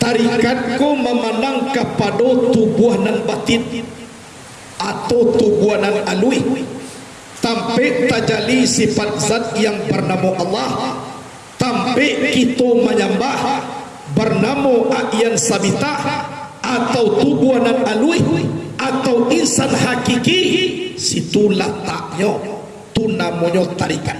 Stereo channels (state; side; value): identical; both; correlation 1.00